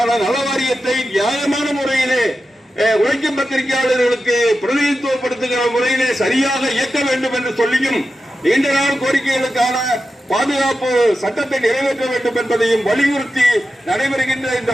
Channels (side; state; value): both; normal; correlation 0.91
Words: நல வாரியத்தை நியாயமான முறையிலே உழைக்கும் பத்திரிகையாளர்களுக்கு பிரதிநிதித்துவப்படுத்துகிற முறையிலே சரியாக இயக்க வேண்டும் என்று சொல்லியும் நீண்ட நாள் கோரிக்கைகளுக்கான பாதுகாப்பு சட்டத்தை நிறைவேற்ற வேண்டும் என்பதையும் வலியுறுத்தி நடைபெறுகின்ற இந்த